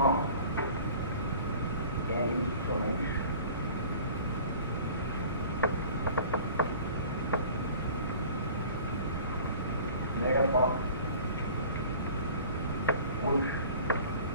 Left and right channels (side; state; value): both; inverted; correlation -0.45